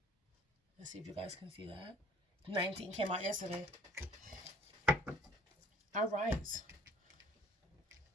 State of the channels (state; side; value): normal; both; correlation 0.53